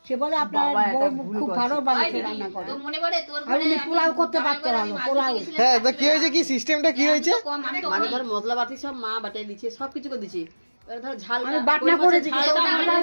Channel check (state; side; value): inverted; both; correlation -1.00